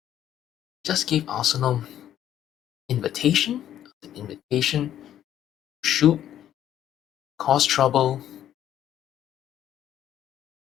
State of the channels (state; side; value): quieter; right; 11.1 dB